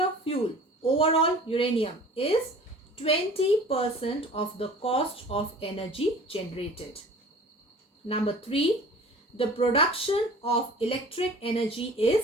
fuel, overall uranium, is 20% of the cost of energy generated. Number 3. The production of electric energy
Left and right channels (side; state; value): both; normal; correlation 0.44